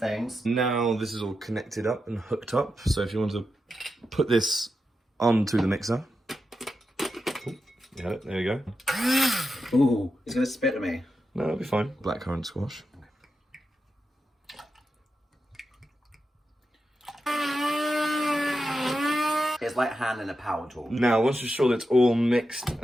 Now this is all connected up and hooked up. So if you want to put this onto the mixer. Oh, you had it, there you go. Ooh, he's going to spit at me. No, it'll be fine. Blackcurrant squash. It's like handling a power tool. Now, once you're sure that it's all mixed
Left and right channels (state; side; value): normal; both; correlation 0.88